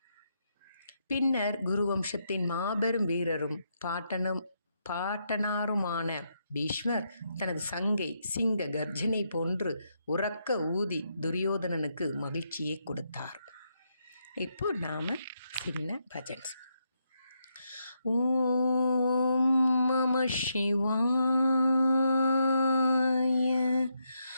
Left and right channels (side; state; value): both; inverted; correlation -0.80